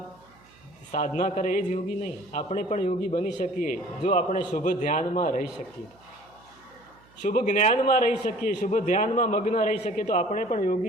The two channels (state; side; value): noise; right; hum, 28 dB below the sound